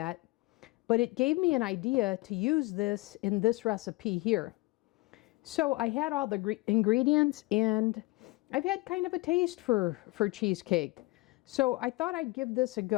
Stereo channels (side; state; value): right; quieter; 22.5 dB